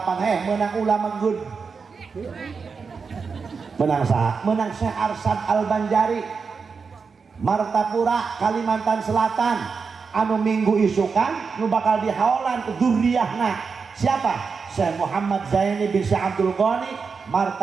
menang ulama good menang saha menang Syekh Arsad Al-Banjari Martapura Kalimantan Selatan anu minggu isukan nu bakal dihaolan ke dzurriahna siapa? Syekh Muhammad Zaini bin Syekh Abdul Ghani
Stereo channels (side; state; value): left; quieter; 5.2 dB